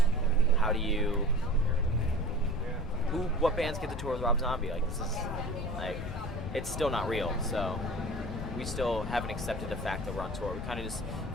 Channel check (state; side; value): noise; left; rumble, 7 dB below the sound